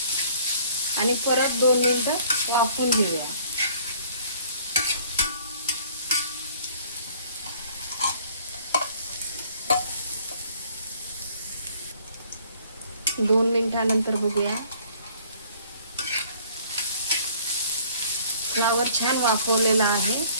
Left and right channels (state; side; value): inverted; both; correlation -0.56